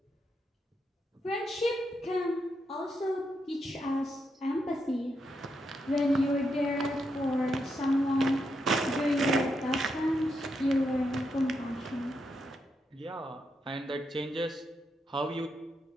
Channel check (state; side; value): normal; both; correlation 0.82